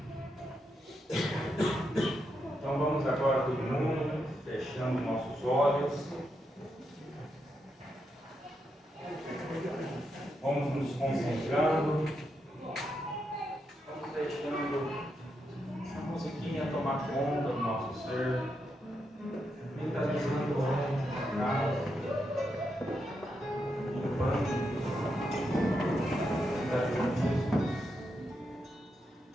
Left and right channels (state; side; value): normal; both; correlation 0.83